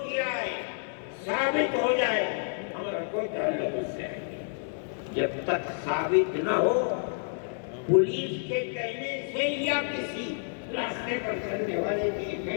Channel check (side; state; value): right; silent; 58 dB below the other